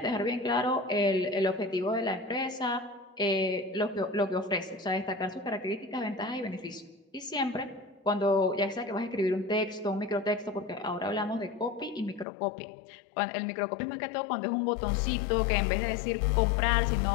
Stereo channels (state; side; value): drops out; right; at 12.2 s